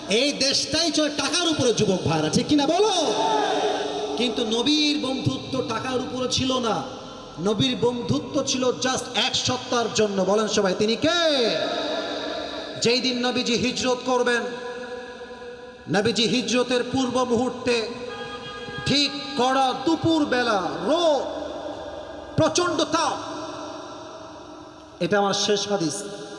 এই দেশটাই চলে টাকার উপরে যুবক ভাইরা, ঠিক কিনা বলো? কিন্তু নবীর বন্ধুত্ব টাকার উপরে ছিল না, নবীর বন্ধুত্ব ছিল জাস্ট এক সত্তার জন্য। বলেন সবাই তিনি কে? যেই দিন নবীজি হিজরত করবেন, নবীজি হিজরতের পূর্ব মুহূর্তে ঠিক কড়া দুপুর বেলা, রোদ, প্রচন্ড তাপ। এটা আমার শেষ হাদিস,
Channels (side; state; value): both; identical; correlation 1.00